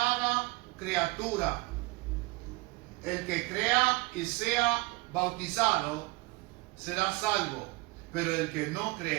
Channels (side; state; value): left; quieter; 22.8 dB